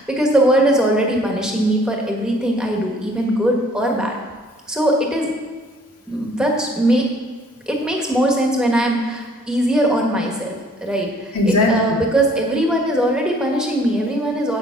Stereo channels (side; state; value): both; normal; correlation 0.58